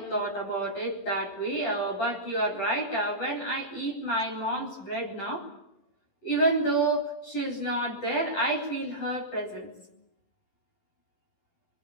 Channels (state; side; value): late; right; 12 ms